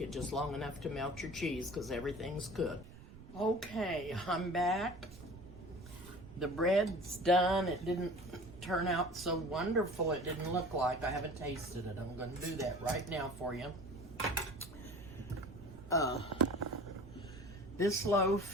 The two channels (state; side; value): noise; right; rumble, 17 dB below the sound